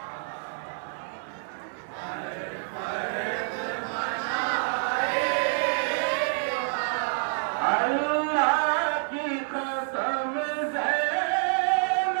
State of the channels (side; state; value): left; silent; 57 dB below the other